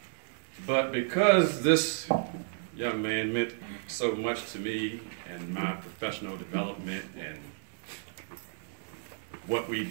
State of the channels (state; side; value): silent; left; digital silence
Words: But because this young man meant so much to me and my professional development and what we